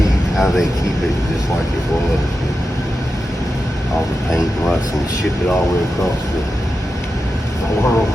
How they keep it just like it was. All the paint and rust and ship it all the way across the world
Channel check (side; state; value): both; normal; correlation 0.90